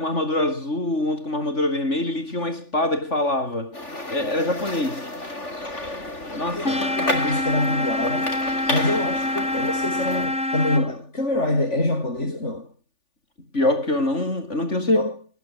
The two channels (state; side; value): late; right; 3.4 ms